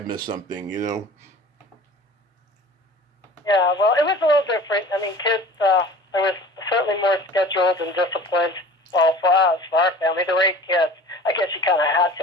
something, Yeah, well, it was a little different. I mean, kids, there was certainly more scheduled and disciplined. Well, for us, for our family, there were 8 kids. I guess you kind of had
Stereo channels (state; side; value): normal; both; correlation 0.42